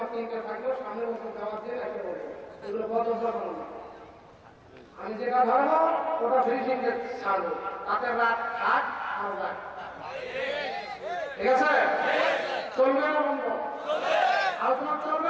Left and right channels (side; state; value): both; identical; correlation 1.00